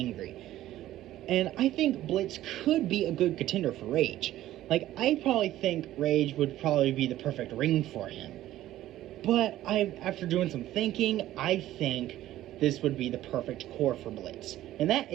And I think Blitz could be a good contender for Rage. Like, I probably think Rage would probably be the perfect ring for him. But after doing some thinking, I think this would be the perfect corps for Blitz. And that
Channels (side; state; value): left; quieter; 14.1 dB